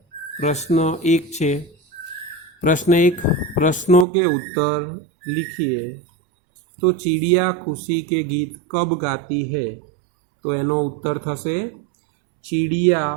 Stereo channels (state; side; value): drops out; left; at 4.0 s